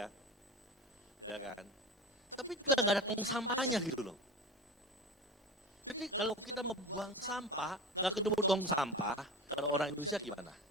Ya kan? Tapi juga nggak ada tong sampahnya gitu loh. Jadi kalau kita membuang sampah, nggak ketemu tong sampah, kalau orang Indonesia gimana?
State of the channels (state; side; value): normal; both; correlation 0.31